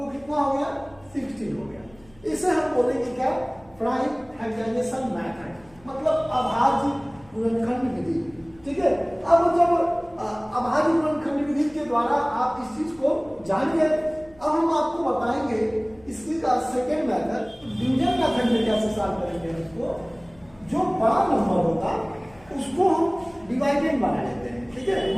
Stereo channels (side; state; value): left; noise; hum, 27 dB below the sound